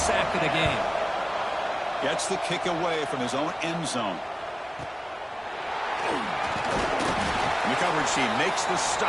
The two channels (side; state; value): both; identical; correlation 1.00